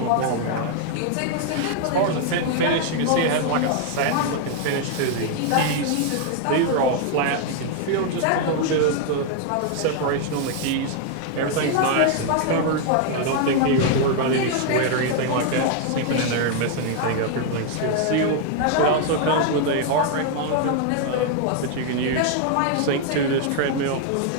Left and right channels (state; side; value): different; both; correlation 0.00